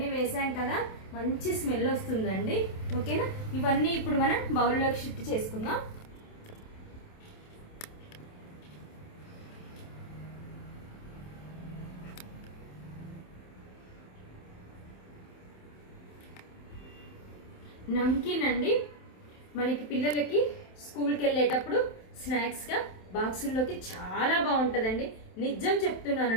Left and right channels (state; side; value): late; right; 27 ms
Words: వేసాం కదా, మంచి స్మెల్ వస్తుందండి. ఓకేనా, ఇవన్నీ ఇప్పుడు మనం బౌల్లోకి షిఫ్ట్ చేసుకుందాం. నమ్కిన్ అండి, మనకి పిల్లలకి స్కూల్కి వెళ్ళేటప్పుడు స్నాక్స్గా బాక్సుల్లోకి చాలా బాగుంటుందండి. నిజం